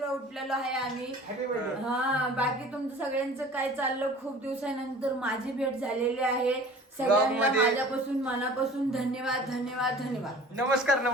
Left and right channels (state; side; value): normal; both; correlation 0.45